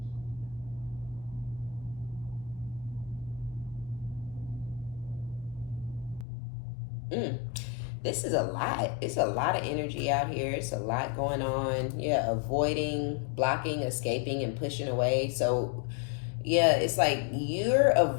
This is a lot. It's a lot of energy out here. It's a lot going on. Yeah, avoiding, blocking, escaping, and pushing away. So yeah, it's like you're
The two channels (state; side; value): drops out; right; at 6.2 s